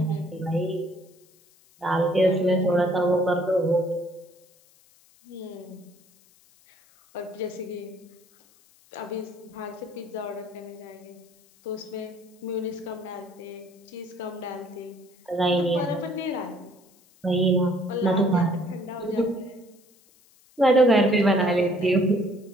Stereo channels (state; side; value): noise; left; hiss, 30 dB below the sound